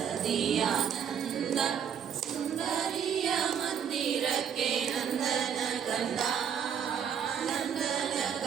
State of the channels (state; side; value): quieter; left; 8.0 dB